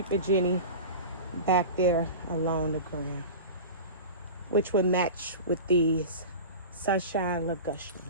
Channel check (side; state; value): both; inverted; correlation -0.32